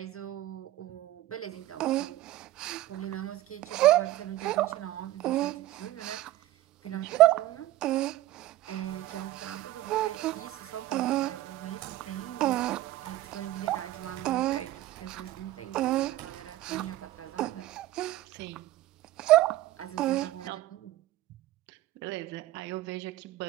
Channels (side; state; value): left; quieter; 15.2 dB